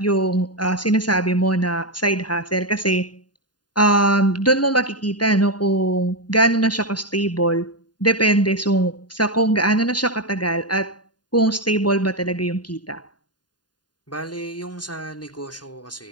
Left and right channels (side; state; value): right; late; 0.70 ms